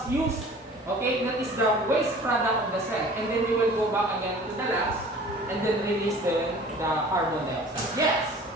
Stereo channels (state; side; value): normal; both; correlation 0.46